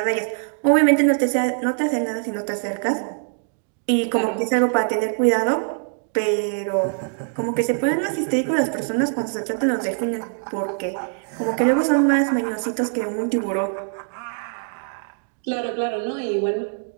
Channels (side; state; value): left; silent; 61 dB below the other